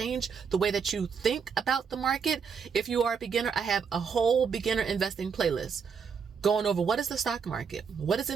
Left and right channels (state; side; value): quieter; left; 6.2 dB